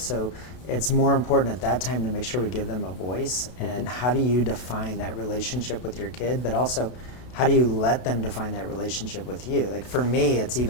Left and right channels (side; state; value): right; late; 32 ms